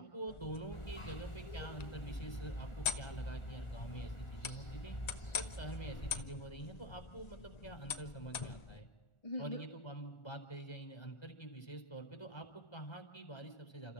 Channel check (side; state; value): right; late; 1.9 ms